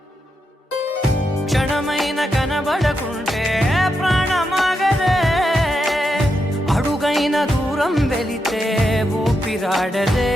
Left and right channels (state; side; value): normal; both; correlation 0.84